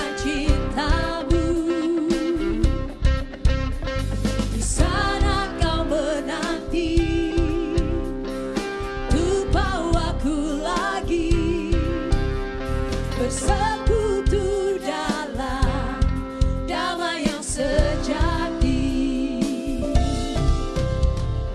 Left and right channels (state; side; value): identical; both; correlation 1.00